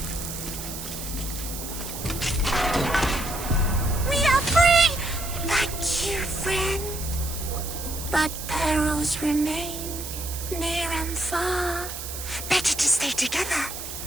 We are free! Thank you, friend. But perils remain, near and far. Better to stay together.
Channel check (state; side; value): noise; right; hiss, 8 dB below the sound